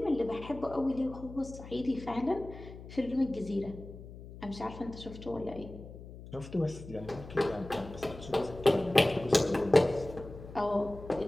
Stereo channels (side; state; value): left; noise; hum, 14 dB below the sound